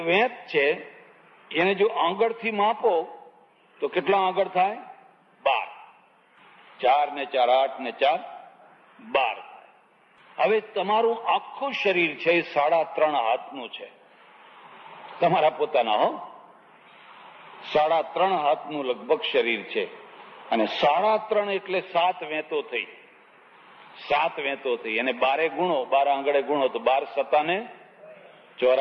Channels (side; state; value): both; identical; correlation 1.00